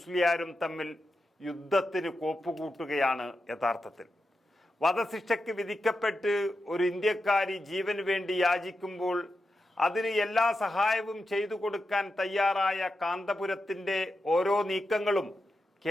തമ്മിൽ യുദ്ധത്തിന് കോപ്പുകൂട്ടുകയാണ് യഥാർത്ഥത്തിൽ. വധശിക്ഷയ്ക്ക് വിധിക്കപ്പെട്ട് ഒരു ഇന്ത്യക്കാരി ജീവന് വേണ്ടി യാചിക്കുമ്പോൾ അതിന് എല്ലാ സഹായവും ചെയ്തു കൊടുക്കാൻ തയ്യാറായ കാന്തപുരത്തിൻ്റെ ഓരോ നീക്കങ്ങളും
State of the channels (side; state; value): both; normal; correlation 0.89